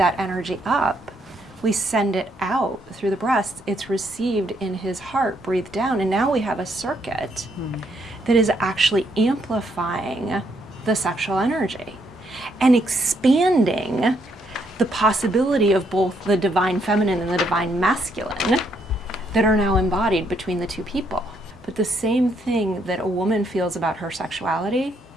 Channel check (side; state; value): both; normal; correlation 0.73